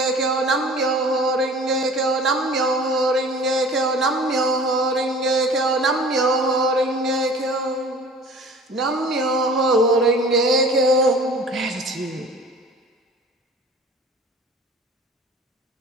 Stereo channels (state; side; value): normal; both; correlation 0.45